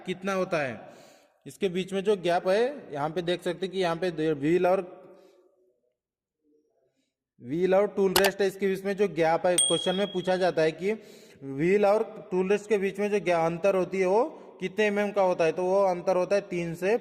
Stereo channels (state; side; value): identical; both; correlation 1.00